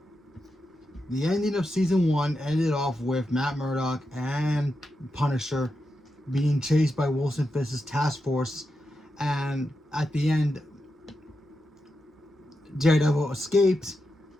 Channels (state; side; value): normal; both; correlation 0.88